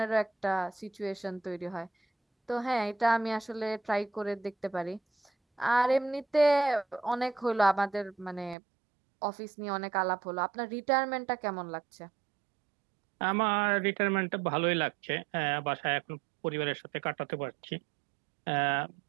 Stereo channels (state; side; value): drops out; left; at 8.6 s